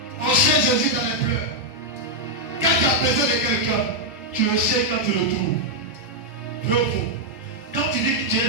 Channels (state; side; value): normal; both; correlation -0.02